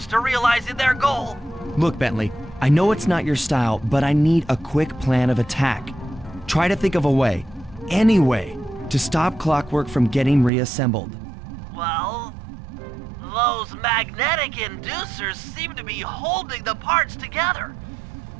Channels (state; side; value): drops out; left; at 10.5 s